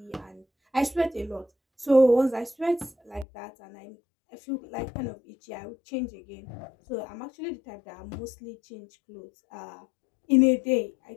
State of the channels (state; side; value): drops out; right; at 3.2 s